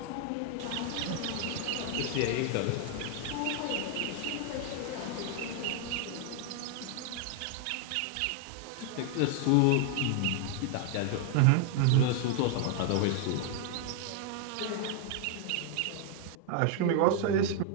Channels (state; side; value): different; both; correlation 0.00